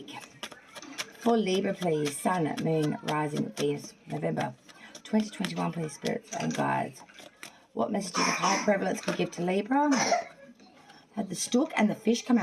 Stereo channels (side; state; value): both; identical; correlation 1.00